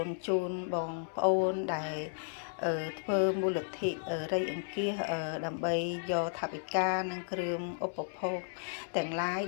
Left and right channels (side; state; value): right; silent; digital silence